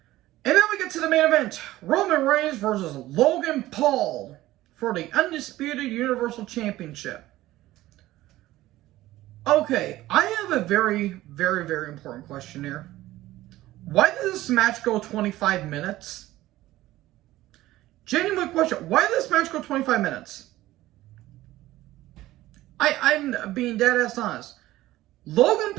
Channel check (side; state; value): left; quieter; 16.1 dB